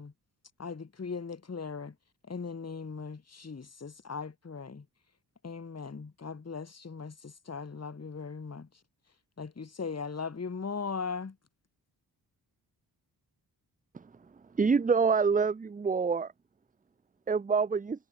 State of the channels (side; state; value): left; quieter; 3.1 dB